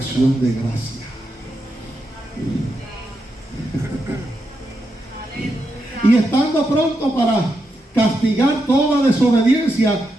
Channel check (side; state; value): both; normal; correlation 0.84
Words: de gracia. Y estando pronto para castigar toda desobediencia